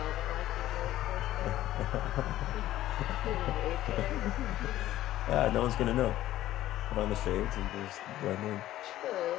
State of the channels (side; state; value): right; quieter; 14.2 dB